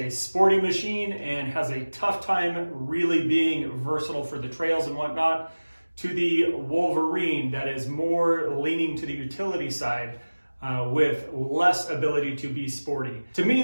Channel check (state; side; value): inverted; both; correlation -1.00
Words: sporty machine and has a tough time really being versatile for the trails and whatnot, to the Wolverine that is more leaning to the utility side with less ability to be sporty. To me,